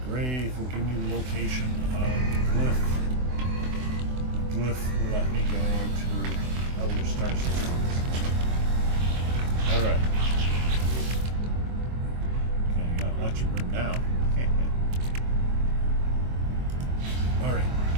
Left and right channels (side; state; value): left; late; 24 ms